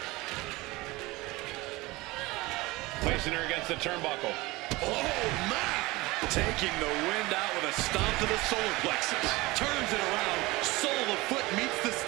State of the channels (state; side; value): quieter; left; 21.5 dB